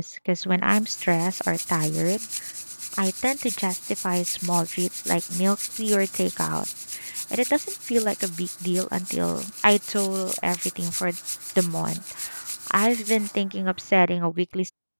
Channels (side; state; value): both; inverted; correlation -1.00